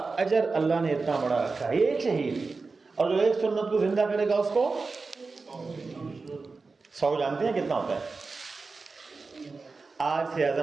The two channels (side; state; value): left; quieter; 4.1 dB